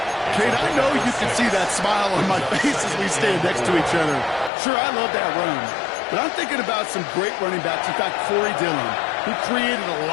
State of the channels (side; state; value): right; drops out; at 4.5 s